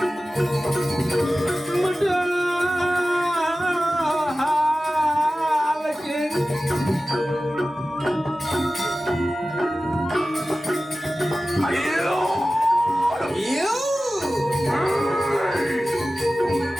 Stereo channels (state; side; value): normal; both; correlation 0.95